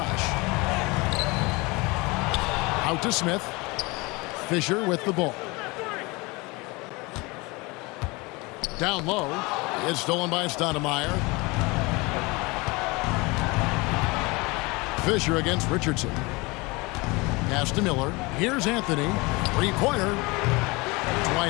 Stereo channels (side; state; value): right; quieter; 25.0 dB